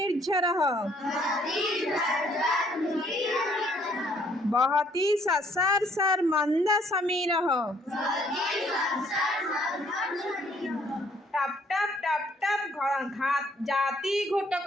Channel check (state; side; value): normal; both; correlation 0.64